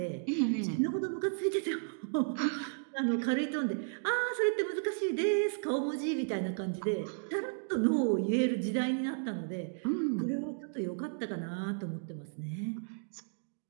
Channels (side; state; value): left; silent; digital silence